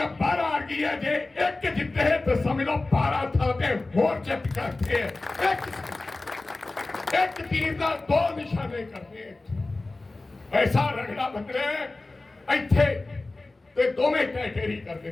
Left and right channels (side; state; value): right; quieter; 3.2 dB